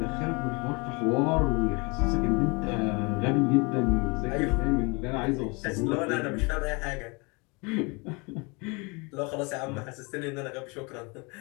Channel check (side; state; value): right; quieter; 29.1 dB